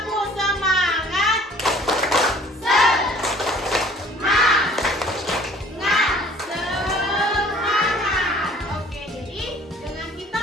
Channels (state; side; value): normal; both; correlation 0.53